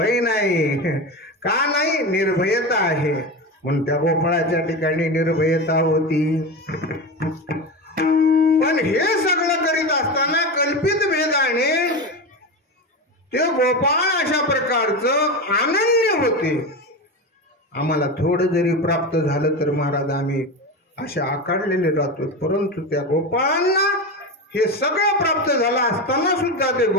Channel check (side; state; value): both; normal; correlation 0.21